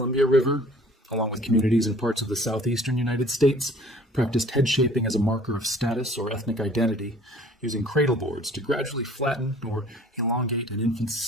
River, along with communities in parts of the southeastern United States, practiced head shaping as a marker of status or ethnic identity, using cradle boards to gradually flatten or elongate an infant's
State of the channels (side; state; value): both; normal; correlation 0.52